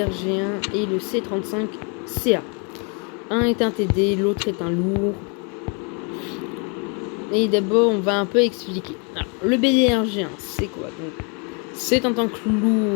et le C35CA. Un est un TD, l'autre est un lourd. Et d'abord, on va un peu expliquer. Alors, le BDRG1, c'est quoi? Donc, c'est en tant que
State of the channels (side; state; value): right; quieter; 35.9 dB